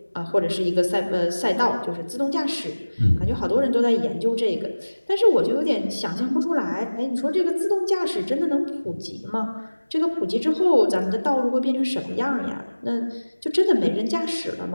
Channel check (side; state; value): both; inverted; correlation -1.00